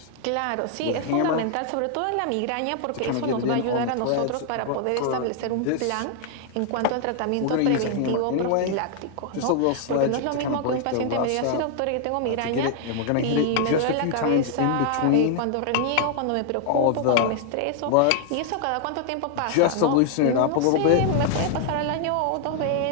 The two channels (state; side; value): different; both; correlation 0.00